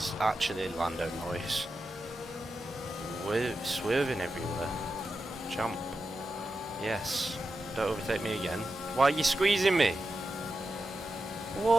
actually Lando Norris. Swerving everywhere. Jump. Yes. Don't overtake me again. Why are you squeezing me?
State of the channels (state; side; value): normal; both; correlation 0.90